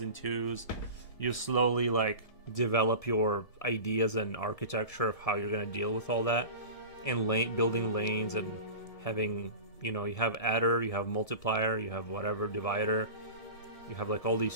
2s, you slowly like develop your ideas and architecture of how you're gonna deal with all that, and building lanes and having, you have adder, you have multiplier, you have whatever divider. You have like all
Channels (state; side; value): late; right; 1.7 ms